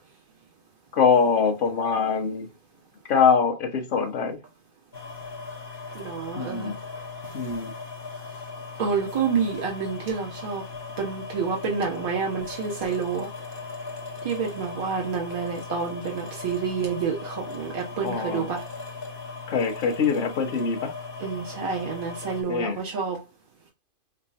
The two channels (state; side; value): late; right; 2.5 ms